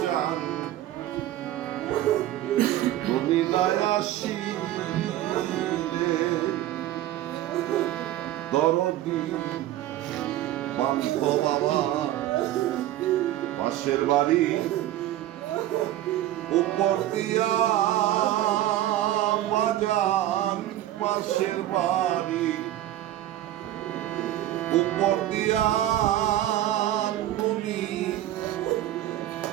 তুমি নাই আসিলে দরদি বান্ধ বাবা পাশের বাড়ি উপর দিয়া বাজান পাশের বাড়ি উপর দিয়া তুমি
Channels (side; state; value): left; quieter; 13.6 dB